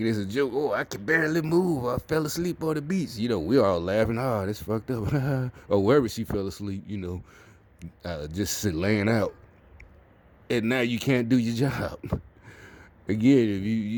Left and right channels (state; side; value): identical; both; correlation 1.00